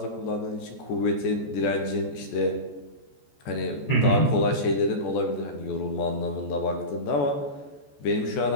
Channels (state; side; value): late; right; 14 ms